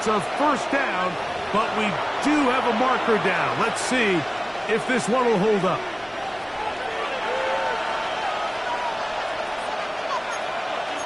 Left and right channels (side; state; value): both; identical; correlation 1.00